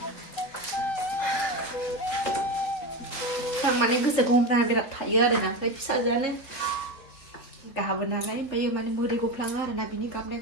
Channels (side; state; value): right; late; 3.9 ms